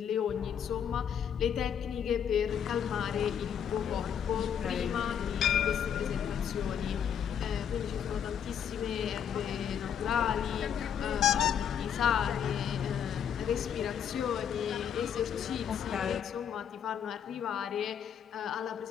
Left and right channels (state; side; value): quieter; right; 8.4 dB